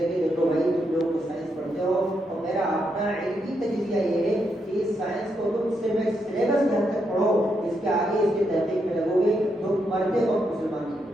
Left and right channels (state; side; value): normal; both; correlation 0.80